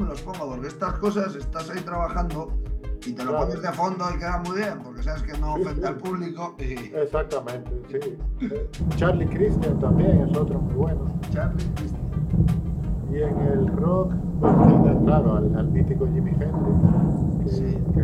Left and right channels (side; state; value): both; identical; correlation 1.00